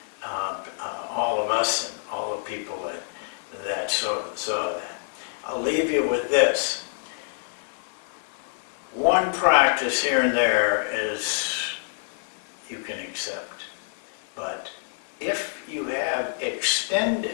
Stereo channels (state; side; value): silent; right; digital silence